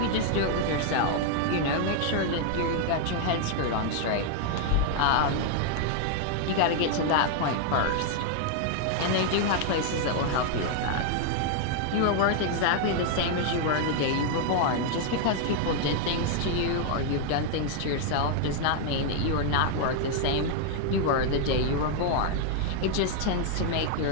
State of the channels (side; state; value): both; different; correlation 0.00